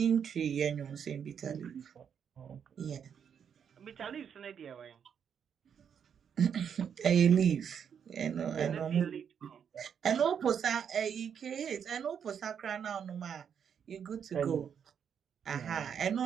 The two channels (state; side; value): quieter; left; 7.8 dB